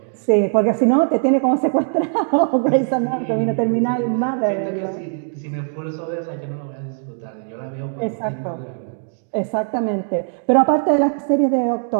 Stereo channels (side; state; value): left; silent; 65 dB below the other